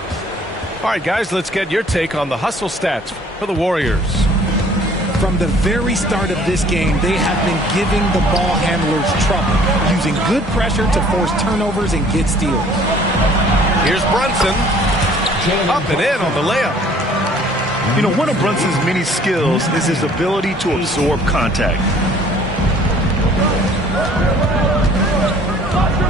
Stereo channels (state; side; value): normal; both; correlation 0.55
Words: All right, guys, let's get your take on the hustle stats for the Warriors. From the very start of this game, they have been giving the ball handlers trouble, using good pressure to force turnovers and get steals. Here's Brunson. Up and in on the layup. You know, one of Brunson's many skills is his ability to absorb contact.